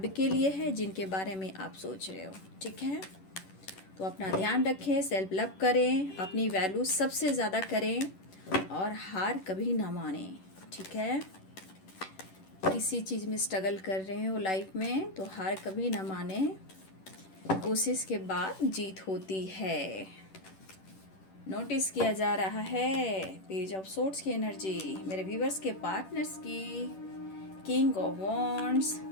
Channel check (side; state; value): right; late; 10 ms